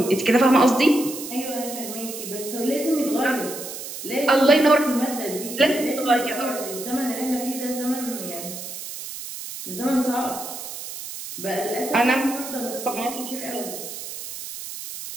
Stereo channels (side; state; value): right; noise; hiss, 9 dB below the sound